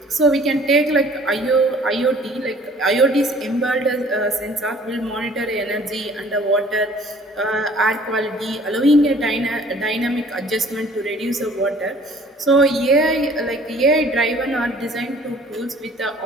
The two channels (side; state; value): both; normal; correlation 0.53